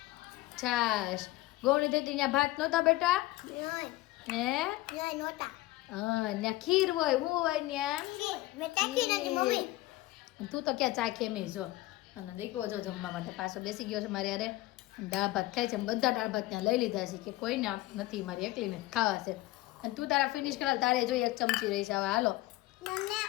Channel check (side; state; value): right; quieter; 18.4 dB